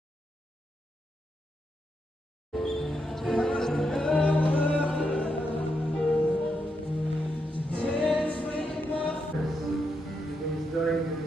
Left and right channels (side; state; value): both; normal; correlation 0.82